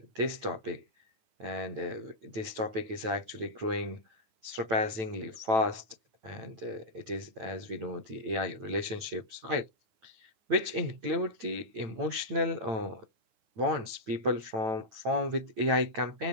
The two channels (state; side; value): late; left; 9.0 ms